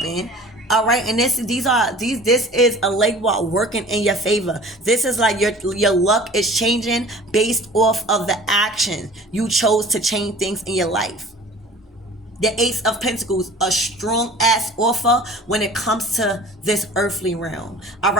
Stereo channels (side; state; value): both; normal; correlation 0.45